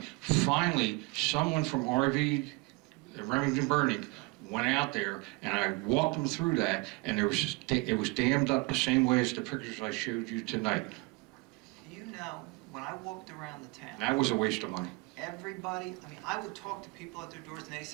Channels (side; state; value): left; quieter; 26.3 dB